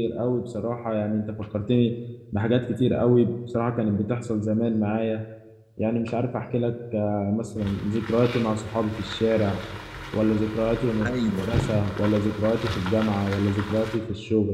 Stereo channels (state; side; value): identical; both; correlation 1.00